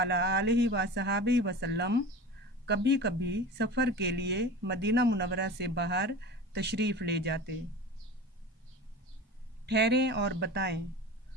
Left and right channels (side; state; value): both; normal; correlation 0.34